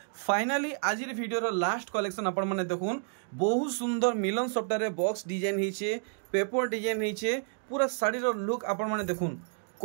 फाइनली आज वीडियो रो लास्ट कलेक्शन आपन माने देखुन बहुत सुंदर मिलन सॉफ्टवेयर रे बॉक्स डिजाइन हिचे पेपर डिजाइन हिचे पूरा साड़ी रो लुक आपन माने देखुन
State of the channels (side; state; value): left; silent; 58 dB below the other